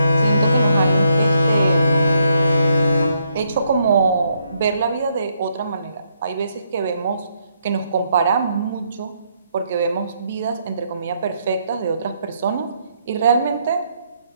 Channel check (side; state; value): both; inverted; correlation -0.75